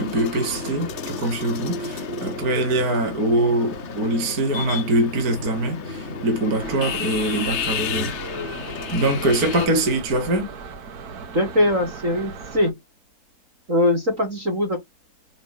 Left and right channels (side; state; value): left; late; 4.4 ms